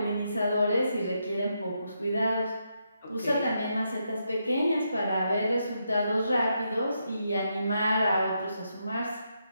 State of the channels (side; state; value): both; inverted; correlation -0.81